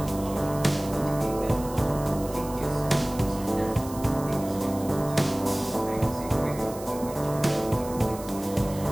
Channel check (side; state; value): right; noise; hiss, 16 dB below the sound